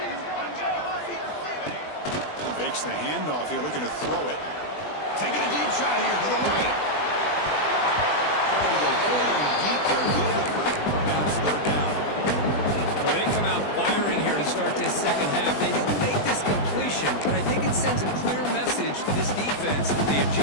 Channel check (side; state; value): right; late; 20 ms